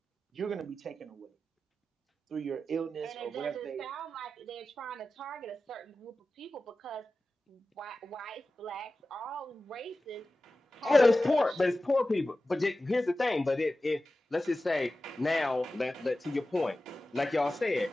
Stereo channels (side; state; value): both; normal; correlation 0.95